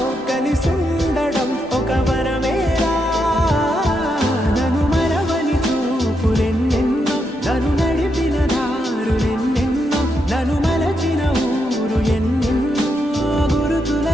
కలిసుండడం ఒక వరమేరా నన్ను మరవని చూపులెన్నెన్నో నన్ను నడిపిన దారులెన్నెన్నో నన్ను మలచిన ఊరు ఎన్నెన్నో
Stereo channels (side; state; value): both; normal; correlation 0.82